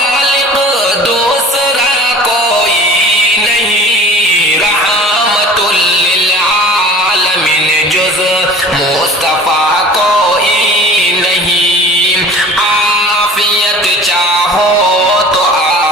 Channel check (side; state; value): both; normal; correlation 0.43